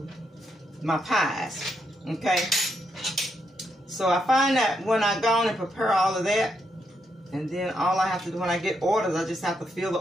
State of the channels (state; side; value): normal; both; correlation 0.79